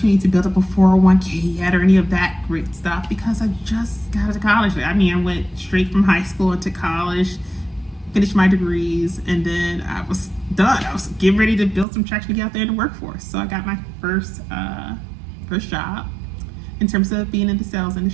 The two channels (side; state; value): left; drops out; at 11.9 s